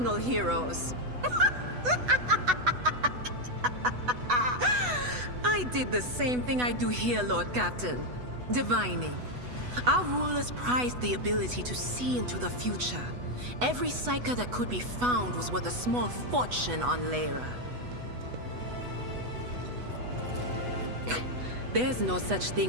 heroes. I did the same thing I do here, Lord Captain. Divining. Our rulers prized the ability to see into the future. Every psyker that could be found was worth a small fortune on Lyra. There's no such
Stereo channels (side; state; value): left; late; 8.1 ms